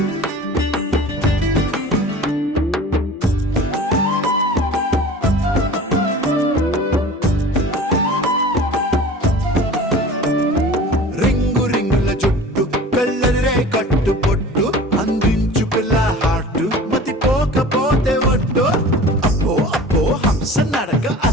కట్టు పొట్టు అందించు పిల్ల హార్ట్ మతి పోకపోతే ఒట్టు అప్పో అప్పో హంస నడక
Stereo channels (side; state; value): both; normal; correlation 0.41